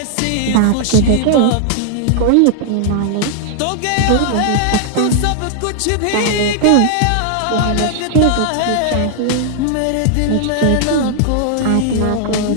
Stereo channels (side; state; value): both; different; correlation -0.01